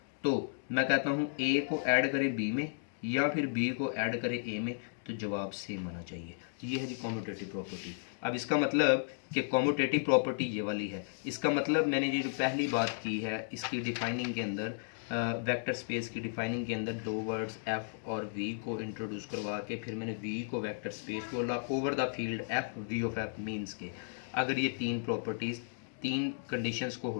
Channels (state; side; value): silent; right; digital silence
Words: तो मैं कहता हूँ a को ऐड करें b में या फिर b को ऐड करें a में, तो जवाब सेम आना चाहिए। ये है जी कम्यूटेटिव प्रॉपर्टी। अब इसका मतलब कि कम्यूटेटिव प्रॉपर्टी ये वाली है। इसका मतलब मैंने ये जो पहली बात की है इसकी डिफाइनिंग के अंदर वेक्टर स्पेस की डिफाइनिंग के अंदर दो वर्ड्स एफ और वी को इंट्रोड्यूस करवा के फिर मैंने वी को वेक्टर स्पेस बोला over the field F V of F means के अगर ये तीन प्रॉपर्टीज़ तीन कंडीशंस को